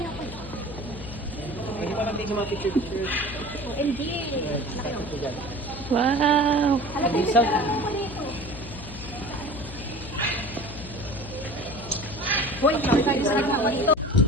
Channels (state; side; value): noise; left; hum, 12 dB below the sound